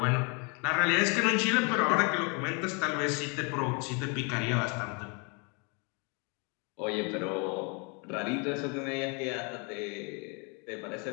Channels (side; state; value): right; quieter; 33.8 dB